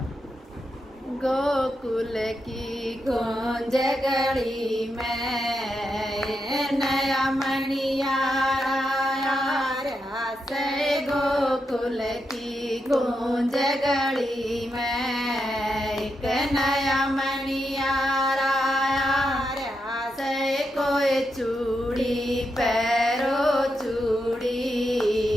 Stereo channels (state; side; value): normal; both; correlation 0.85